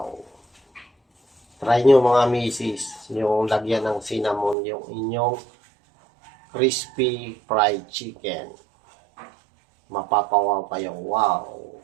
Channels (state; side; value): drops out; left; at 4.5 s